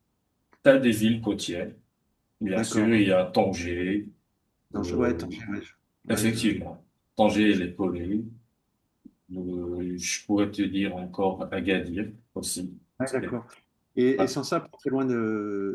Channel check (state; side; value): identical; both; correlation 1.00